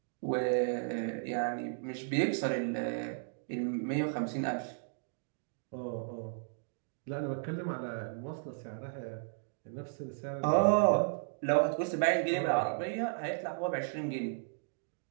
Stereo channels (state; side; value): silent; left; digital silence